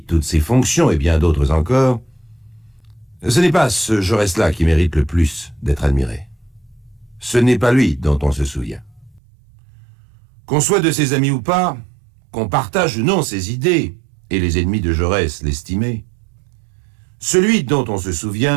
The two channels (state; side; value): drops out; left; at 9.2 s